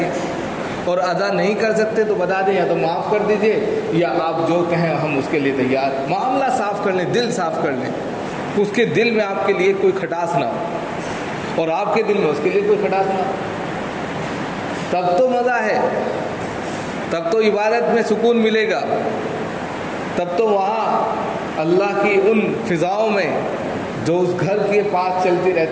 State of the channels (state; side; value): identical; both; correlation 1.00